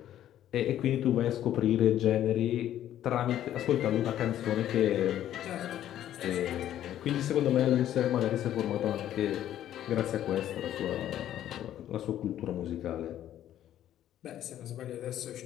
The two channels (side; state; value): right; quieter; 11.8 dB